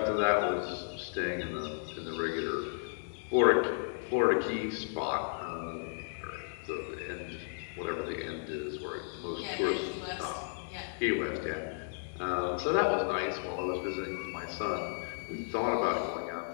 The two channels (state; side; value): silent; right; digital silence